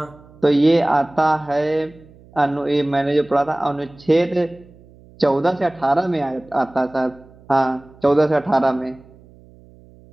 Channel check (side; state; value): right; noise; hum, 25 dB below the sound